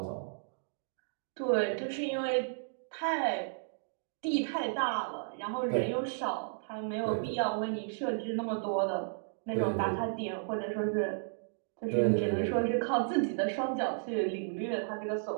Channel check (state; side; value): silent; left; digital silence